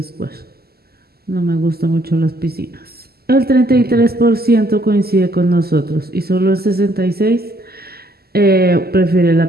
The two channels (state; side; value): late; left; 0.46 ms